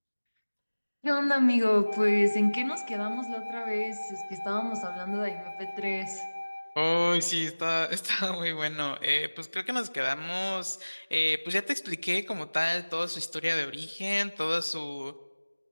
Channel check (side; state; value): both; inverted; correlation -1.00